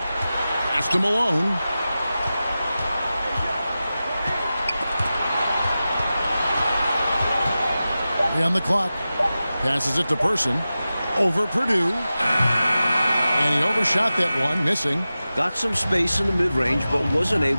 Pass to Malone. On the clock. Passes it to Person. Over Purdue. And he overshot that one, missing. Got some space in the mid-range, but wasn't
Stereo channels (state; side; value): inverted; both; correlation -0.94